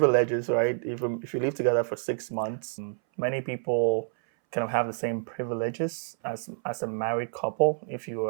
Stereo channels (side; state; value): left; silent; 59 dB below the other